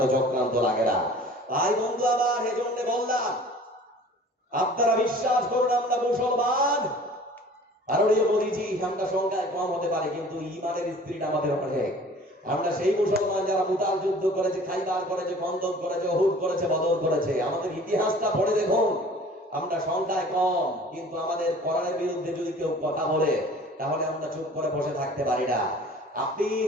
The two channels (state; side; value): normal; both; correlation 0.47